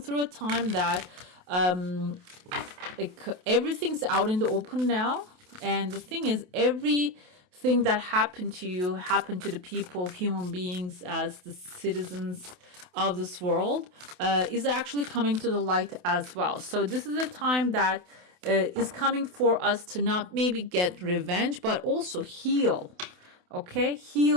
a time that like everything's out in the open now, and the thing is, everything that happened to you happened to the people, human beings, as the citizens of this world, is actually coming to the light as well. So this is a time that is coming for us to not maybe get revenge, but also heal. Okay,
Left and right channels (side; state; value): left; late; 28 ms